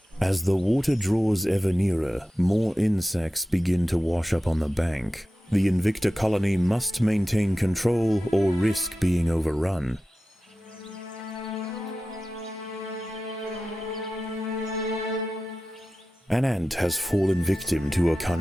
As the water draws ever nearer, more insects begin to wash up on the bank. The Invicta colony must maintain control or risk being overrun. An ant has fallen victim to a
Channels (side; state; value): both; normal; correlation 0.94